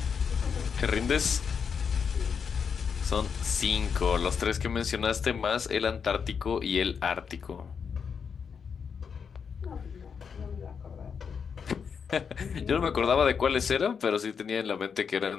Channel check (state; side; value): quieter; right; 6.4 dB